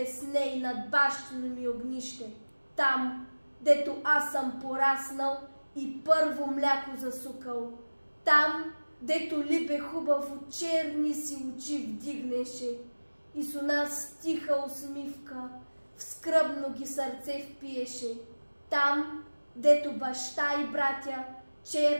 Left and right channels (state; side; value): inverted; both; correlation -1.00